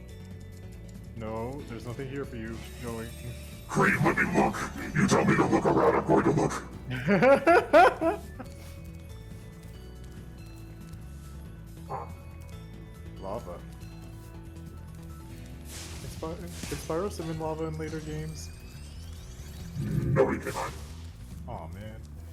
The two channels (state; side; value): identical; both; correlation 1.00